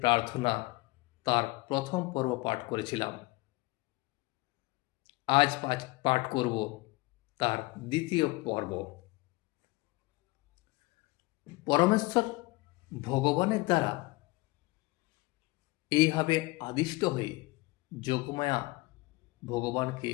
প্রার্থনা তার প্রথম পর্ব পাঠ করেছিলাম। আজ পাঠ করব তার দ্বিতীয় পর্ব। পরমেশ্বর ভগবানের দ্বারা এইভাবে আদিষ্ট হয়ে যোগমায়া ভগবানকে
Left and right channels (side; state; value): right; quieter; 22.2 dB